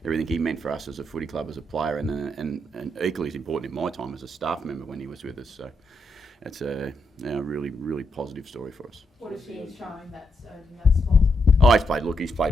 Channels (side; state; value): both; normal; correlation 0.80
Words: everything he meant for us as a footy club, as a player, and equally as important in my time as a staff member when he was with us. So it's a really, really positive story for us. What is he showing that's in that spot? Oh, he's